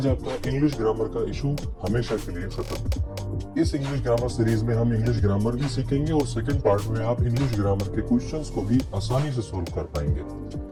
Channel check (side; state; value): both; identical; correlation 1.00